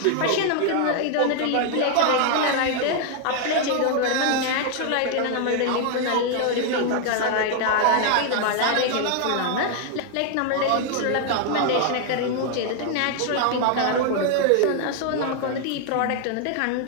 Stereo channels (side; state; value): both; different; correlation 0.00